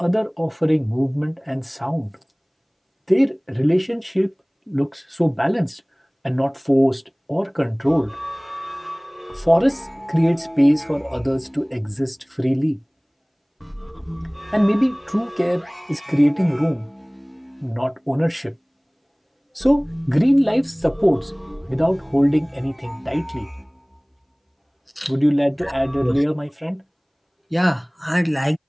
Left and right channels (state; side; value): identical; both; correlation 1.00